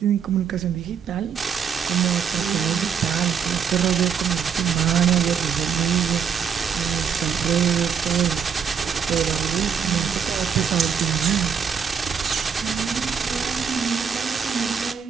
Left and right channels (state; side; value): quieter; left; 7.1 dB